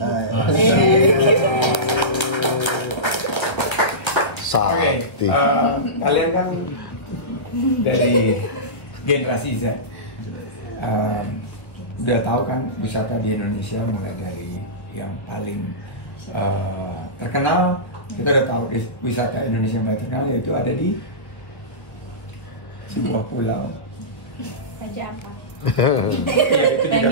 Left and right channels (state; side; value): late; right; 1.4 ms